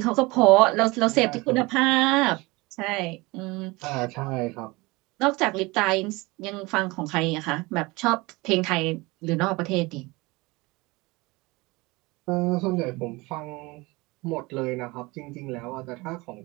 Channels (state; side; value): quieter; left; 23.4 dB